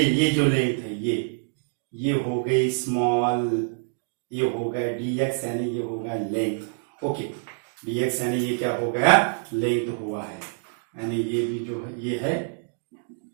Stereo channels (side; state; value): left; silent; digital silence